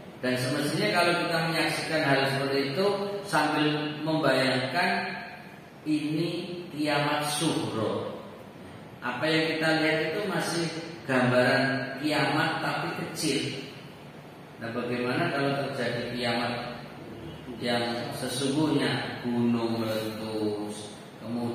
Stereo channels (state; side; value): identical; both; correlation 1.00